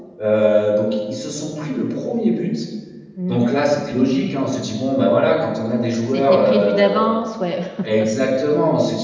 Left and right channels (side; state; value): both; identical; correlation 1.00